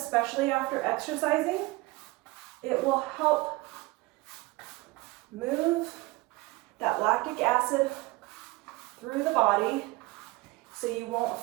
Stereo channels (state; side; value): quieter; left; 22.2 dB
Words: after exercising, It will help move that lactic acid through the body so you won't